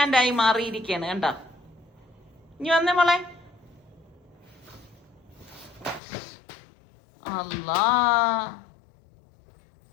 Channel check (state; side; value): drops out; right; at 6.0 s